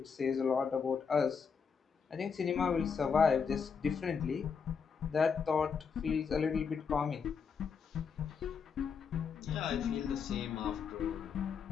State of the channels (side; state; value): right; quieter; 6.1 dB